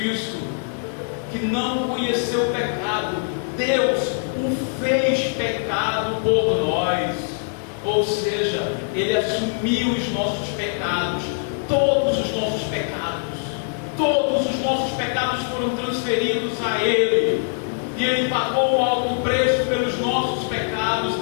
que não conheceu o pecado, Deus o fez pecado por nós. Ou seja, Ele assumiu os nossos pecados, todos os nossos pecados. Todos os nossos pecados foram transferidos a Ele. E Ele pagou um alto preço pelos nossos pecados.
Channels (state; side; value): silent; right; digital silence